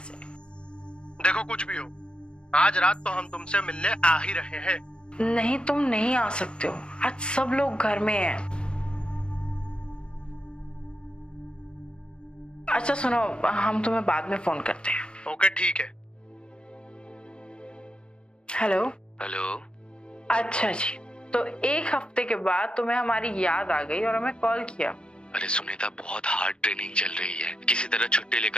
हैं। देखो कुछ भी हो, आज रात तो हम तुमसे मिलने आ ही रहे हैं। नहीं, तुम नहीं आ सकते हो, आज सब लोग घर में हैं। अच्छा सुनो, हम तुम्हें बाद में फोन करते हैं। ओके ठीक है। हेलो। हेलो। अच्छा जी, तो एक हफ्ते के बाद तुम्हें हमारी याद आ गई और हमें कॉल किया। अरे सुनीता, बहुत हार्ड ट्रेनिंग चल रही है, किसी तरह छुट्टी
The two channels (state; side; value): late; right; 0.053 ms